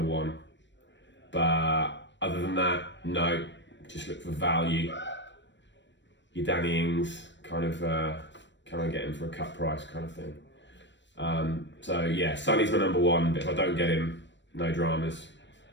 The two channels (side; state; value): right; late; 0.53 ms